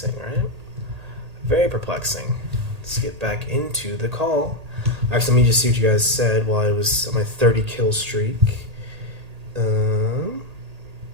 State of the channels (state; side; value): late; left; 1.8 ms